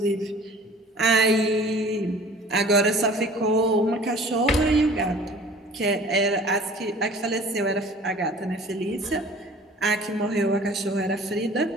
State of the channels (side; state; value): both; normal; correlation 0.47